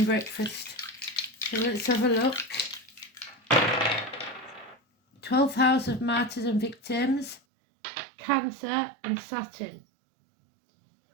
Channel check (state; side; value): drops out; left; at 7.4 s